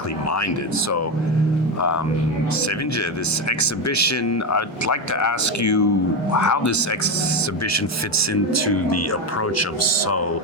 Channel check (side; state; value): both; normal; correlation 0.13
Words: minded. So, Sevince, this exhibition, I'd like to ask you how this exhibition fits into the approach of So